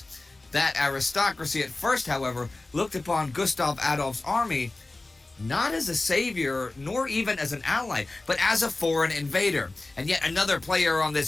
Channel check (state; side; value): quieter; right; 3.1 dB